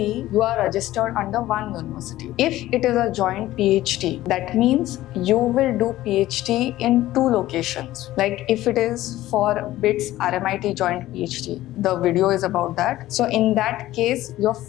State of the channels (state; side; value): quieter; right; 15.4 dB